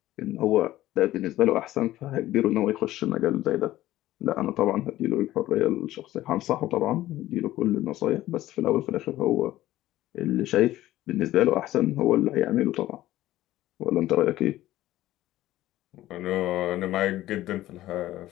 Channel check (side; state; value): right; quieter; 15.1 dB